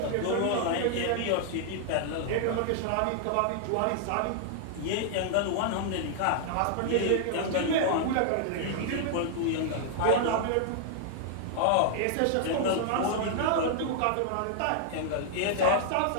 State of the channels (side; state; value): both; different; correlation 0.00